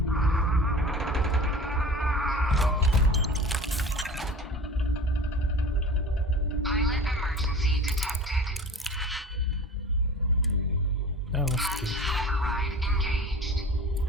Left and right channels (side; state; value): both; normal; correlation 0.39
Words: Pilot emergency detected. Oh, that's good. Override engaged.